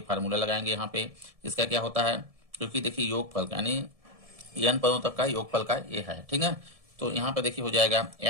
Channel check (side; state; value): left; late; 1.7 ms